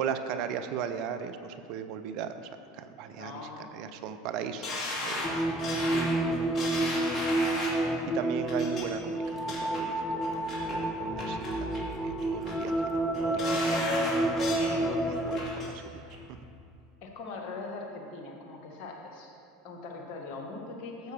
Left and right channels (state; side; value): normal; both; correlation 0.59